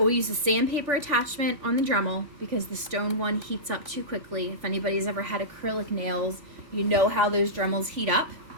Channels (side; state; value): left; late; 3.5 ms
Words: use a sandpaper attachment on the Dremel because the stone one heats up too quickly. If anybody's ever had acrylic nails, you know how those Dremels heat up.